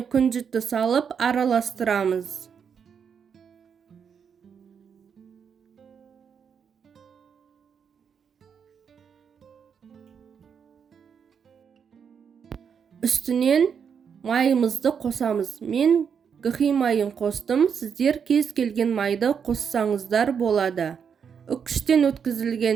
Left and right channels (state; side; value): quieter; left; 7.0 dB